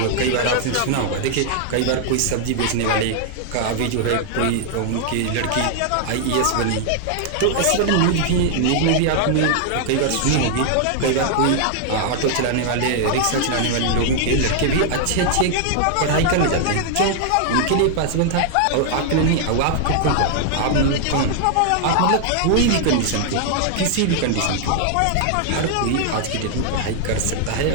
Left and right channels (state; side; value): different; both; correlation 0.00